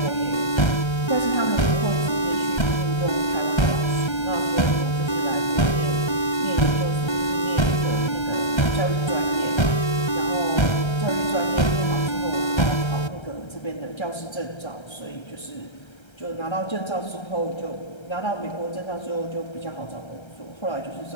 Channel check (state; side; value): late; right; 1.3 ms